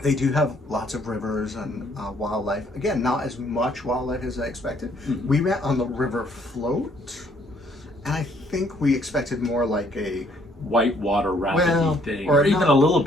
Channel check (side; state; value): both; normal; correlation 0.65